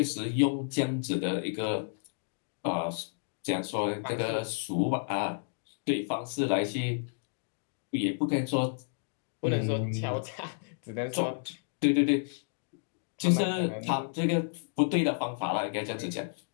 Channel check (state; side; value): silent; right; digital silence